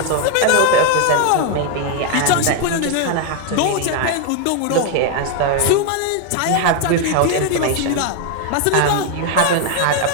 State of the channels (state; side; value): different; both; correlation 0.01